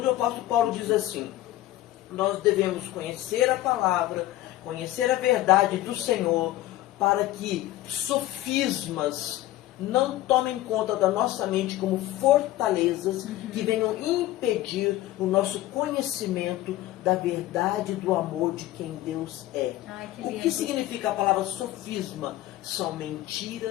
o apóstolo Paulo diz assim, nós devemos conhecer a palavra, conhecer a verdade do Senhor, para que sofismas não tomem conta da nossa mente como fortalezas que venham impedir o nosso conhecimento da verdade do amor de quem Deus é. Ai, que O lindo. que significa a palavra sofisma? São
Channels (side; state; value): right; quieter; 15.3 dB